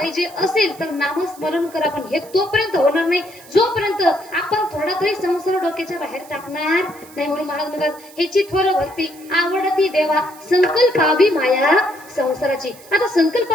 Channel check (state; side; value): noise; right; hiss, 22 dB below the sound